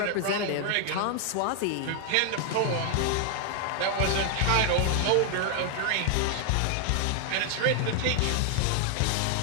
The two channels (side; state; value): both; different; correlation 0.00